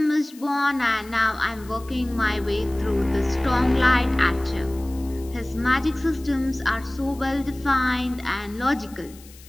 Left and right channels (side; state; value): left; noise; hiss, 22 dB below the sound